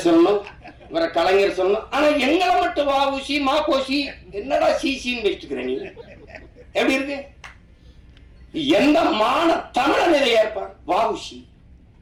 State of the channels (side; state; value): both; identical; correlation 1.00